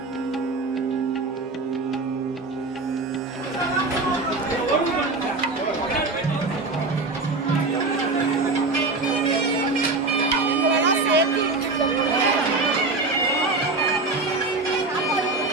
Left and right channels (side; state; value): left; quieter; 3.5 dB